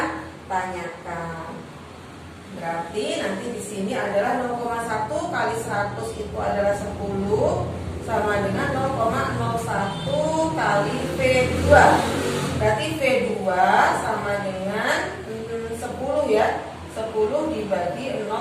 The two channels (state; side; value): identical; both; correlation 1.00